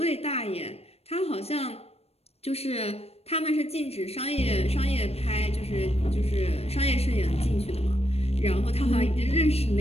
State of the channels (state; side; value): late; right; 0.29 ms